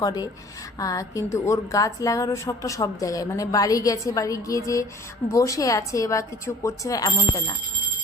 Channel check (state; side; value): normal; both; correlation 0.50